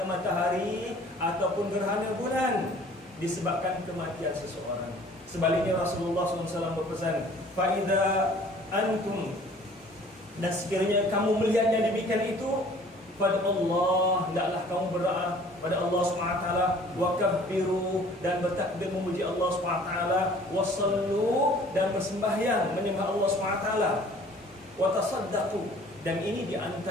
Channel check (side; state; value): both; normal; correlation 0.52